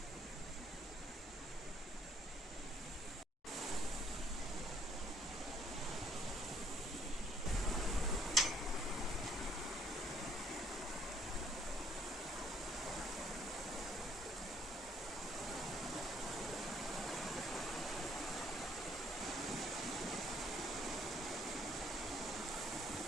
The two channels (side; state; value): both; normal; correlation 0.65